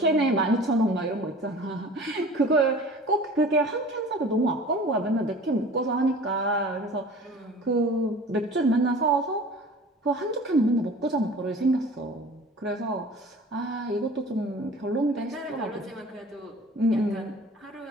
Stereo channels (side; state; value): both; normal; correlation 0.42